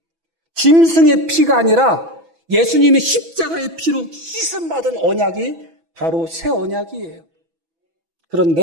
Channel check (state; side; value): late; left; 6.0 ms